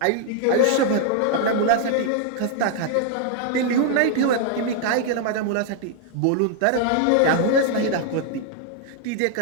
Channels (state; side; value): different; both; correlation 0.00